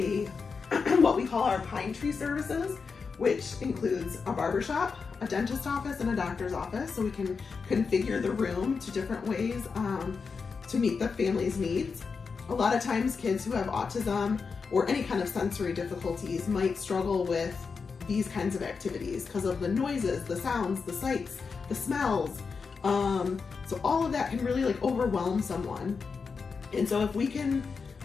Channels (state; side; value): quieter; right; 5.2 dB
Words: what we call our Pine Tree services, which includes a barbershop, a dentist office, and a doctor's office. So we can configure the room to different ways to meet the family's needs. A lot of times kids who have autism or any kind of sensory difficulties might struggle with these kinds of activities because of the noises, the sounds, the sights, the smells. So all of that can really overwhelm someone. And so if we can